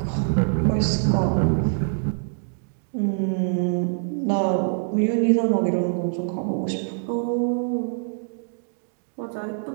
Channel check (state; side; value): silent; left; digital silence